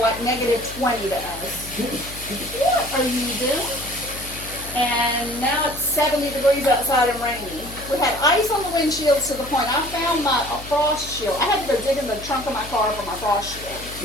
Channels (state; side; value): noise; left; hum, 14 dB below the sound